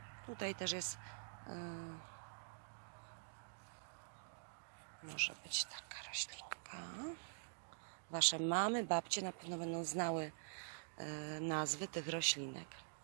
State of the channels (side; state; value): left; silent; digital silence